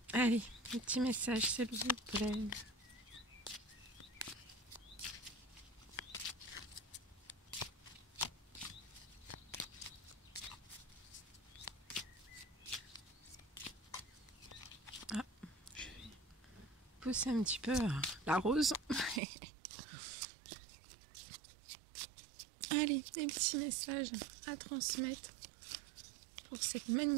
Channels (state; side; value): drops out; left; at 19.2 s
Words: Allez, un petit message s'il vous plaît. Ah, je vais pousser un petit peu la rose. Allez, des petits messages à transmettre pour cette